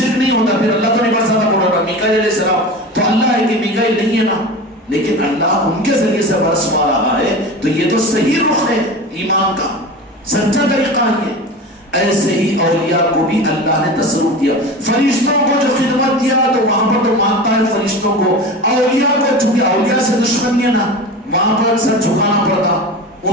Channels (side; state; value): both; normal; correlation 0.30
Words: نہیں ہوتا. پھر اللہ تو نہیں برساتا بول رہا میکائیل علیہ السلام تو اللہ ہے کہ میکائیل نہیں ہے نا، لیکن اللہ ان کے ذریعے سے برسوا رہا ہے. تو یہ تو صحیح رخ ہے ایمان کا، سچا طریقہ ہے. ایسے ہی اولیاء کو بھی اللہ نے تصرف دیا. فرشتوں کو جو خدمت دیا تو وہاں پر تو مانتا ہے فرشتوں کو. اولیاء کو چونکہ اولیاء سے دشمنی ہے نا، وہاں پر سر جھکانا پڑتا،